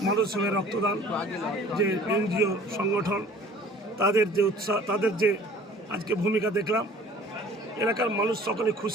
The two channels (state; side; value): normal; both; correlation 0.49